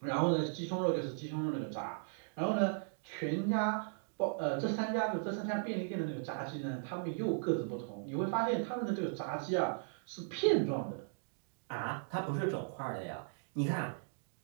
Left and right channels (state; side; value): silent; left; digital silence